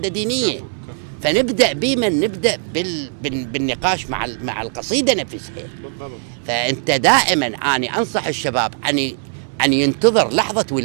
دينيه. كفو. فنبدا نبدا بالنقاش مع القصيده نفسها. بالضبط. فانت دائما اني انصح الشباب ان ينتظر لحظه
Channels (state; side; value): silent; left; digital silence